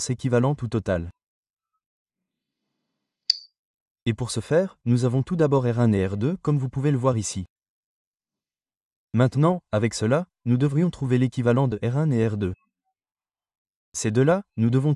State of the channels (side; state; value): both; identical; correlation 1.00